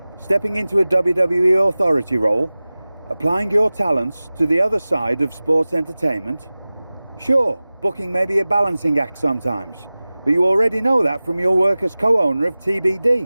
Stepping into a WWE authority role, applying your talents to the other side of sports entertainment. Sure, booking may be a balancing act sometimes, but you already know that from your work as co-owner of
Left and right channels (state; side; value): inverted; both; correlation -0.98